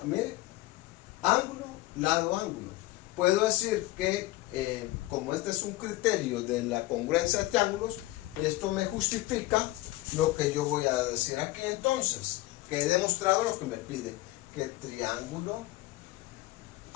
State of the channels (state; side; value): quieter; right; 18.5 dB